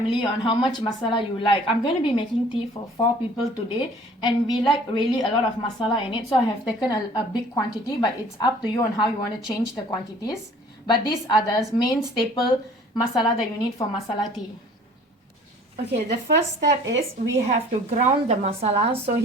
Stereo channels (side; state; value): both; normal; correlation 0.51